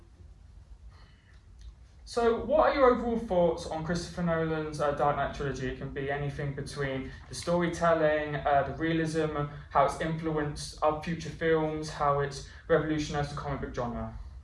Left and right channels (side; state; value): both; identical; correlation 1.00